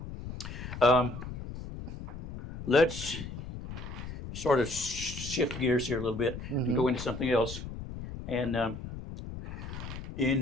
Let's sort of shift gears here a little bit and go into something else. And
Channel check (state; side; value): noise; left; rumble, 9 dB below the sound